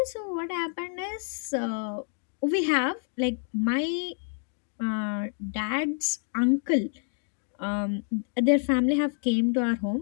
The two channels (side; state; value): right; silent; 56 dB below the other